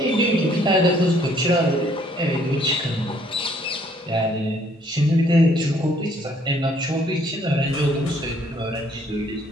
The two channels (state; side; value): normal; both; correlation 0.64